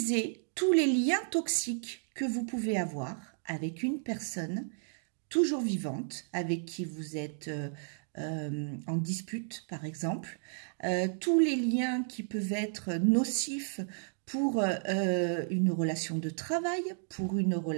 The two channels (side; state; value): left; silent; digital silence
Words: tous les liens toxiques que vous pouvez avoir avec une personne toujours vivante, avec qui vous êtes en dispute par exemple, tous les liens qui peuvent être nocifs pour une relation de travail, pour une